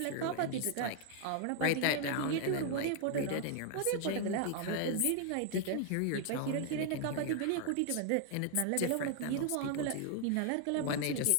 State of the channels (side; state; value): both; different; correlation 0.00